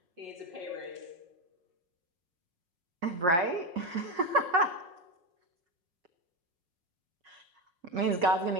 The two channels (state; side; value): late; left; 5.8 ms